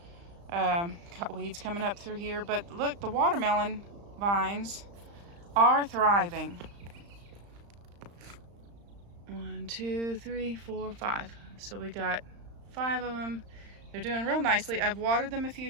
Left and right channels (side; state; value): left; late; 35 ms